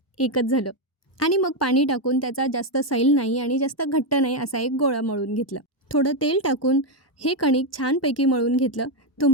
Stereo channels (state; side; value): normal; both; correlation 0.04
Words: एकच झालं. आणि मग पाणी टाकून त्याचा जास्त सैल नाही आणि जास्त घट्ट नाही असा एक गोळा मळून घेतला. थोडं तेल टाकून हे कणिक छानपैकी मळून घेतलं.